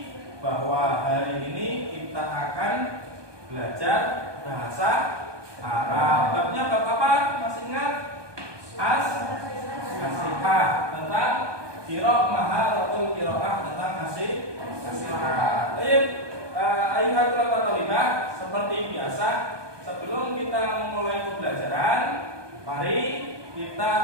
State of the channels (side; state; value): left; late; 1.2 ms